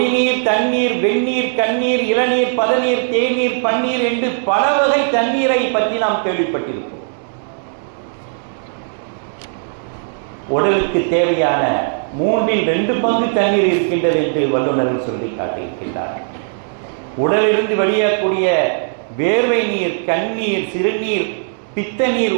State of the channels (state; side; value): silent; left; digital silence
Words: தண்ணீர், வெந்நீர், கண்ணீர், இளநீர், பதநீர், தேநீர், பன்னீர் என்று பல வகை தண்ணீரை பற்றி நாம் கேள்விப்பட்டிருப்போம். உடலுக்கு தேவையான 3/2 பங்கு தண்ணீர் இருக்கின்றது என்று வல்லுநர்கள் சொல்லி காட்டியிருக்கின்றார்கள். உடலிலிருந்து வெளியேறக்கூடிய வேர்வை நீர், கண்ணீர், சிறுநீர், பித்த நீர்,